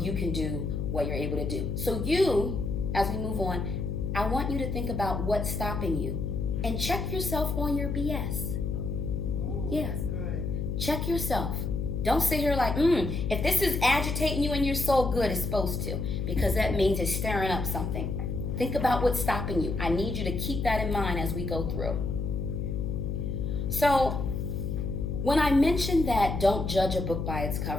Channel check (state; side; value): noise; left; hum, 2 dB below the sound